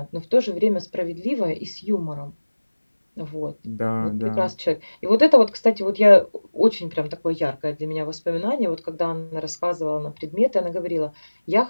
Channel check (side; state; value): both; inverted; correlation -1.00